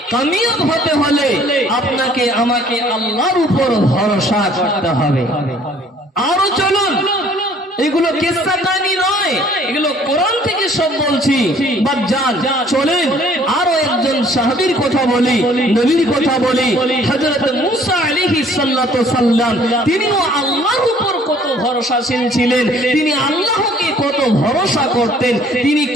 কামিয়াব হতে হলে আপনাকে আমাকে আল্লাহর উপর ভরসা করতে হবে। আরো চলুন, এগুলো কিসসা কাহিনী নয়, এগুলো কোরআন থেকে সব বলছি। বাজান চলেন আরো একজন সাহাবীর কথা বলি, নবীর কথা বলি। হযরত মুসা আলাইহিস সালাতু সাল্লাম, তিনিও আল্লাহর উপর কত ভরসাশীল ছিলেন, তিনি আল্লাহকে কত ভরসা করতেন, তিনি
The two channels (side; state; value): both; normal; correlation 0.57